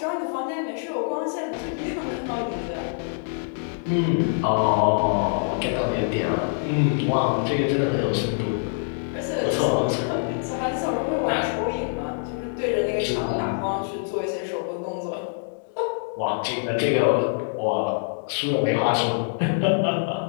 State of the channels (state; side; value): silent; right; digital silence